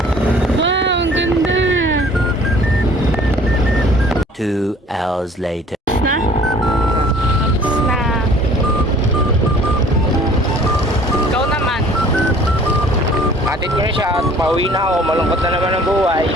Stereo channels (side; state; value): both; normal; correlation 0.52